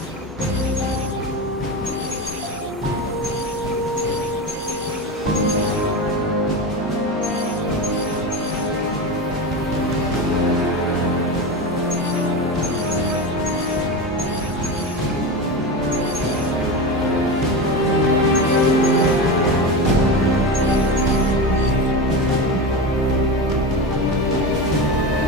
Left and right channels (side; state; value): both; normal; correlation 0.21